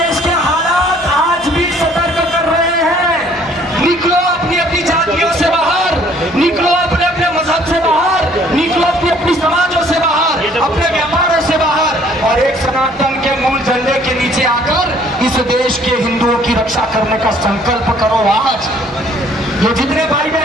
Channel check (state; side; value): normal; both; correlation 0.59